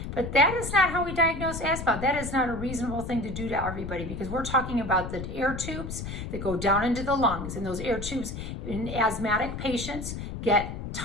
But that is not how we diagnose asthma. That is not a reasonable thing to do to everybody, because we're talking about the air tubes that go down into the lungs. And those air tubes in asthmatic patients get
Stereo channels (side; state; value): left; noise; rumble, 7 dB below the sound